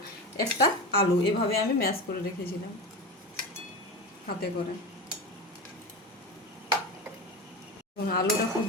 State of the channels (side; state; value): both; normal; correlation 0.25